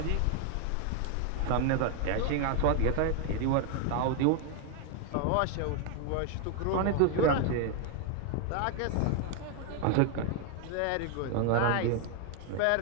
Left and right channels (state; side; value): different; both; correlation 0.01